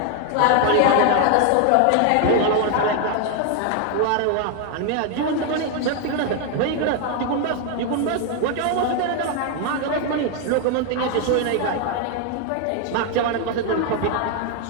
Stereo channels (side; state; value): both; different; correlation 0.00